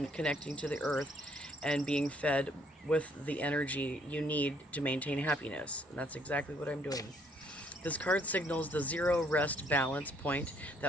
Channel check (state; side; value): normal; both; correlation 0.66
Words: connecting to the earth and being fed with the energy you need to maintain happiness. And that's exactly what I'm doing. This card signals the zero rest balance point